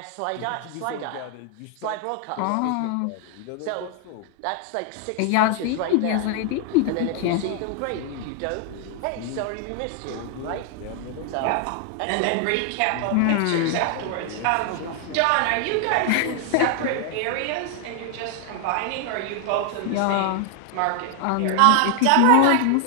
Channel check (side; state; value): both; different; correlation 0.00